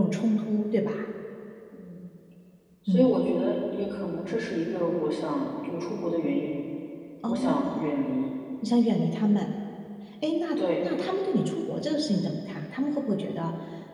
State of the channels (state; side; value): identical; both; correlation 1.00